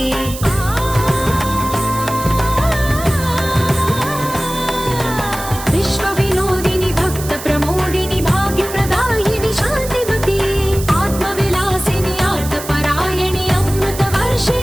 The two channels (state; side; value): noise; right; hiss, 11 dB below the sound